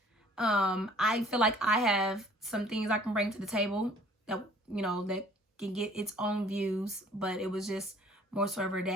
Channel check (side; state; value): both; normal; correlation 0.54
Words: I feel like I have some things I can bring to the table that, you know, that can get its own views. But it was just more so ever